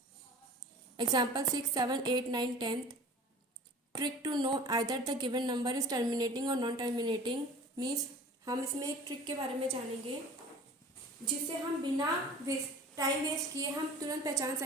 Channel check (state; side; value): normal; both; correlation 0.42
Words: example 6, 7, 8, 9, 10th. Trick to know either the given number is terminating or non-terminating means हम इसमें एक trick के बारे में जानेंगे जिससे हम बिना टाइम वेस्ट किए हम तुरंत पहचान